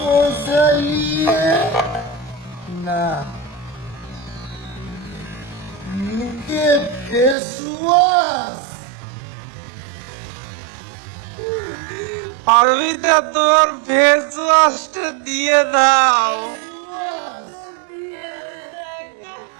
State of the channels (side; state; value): left; drops out; at 7.4 s